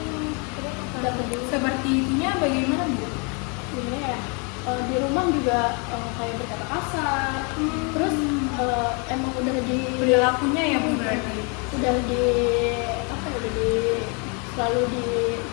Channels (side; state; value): right; quieter; 34.5 dB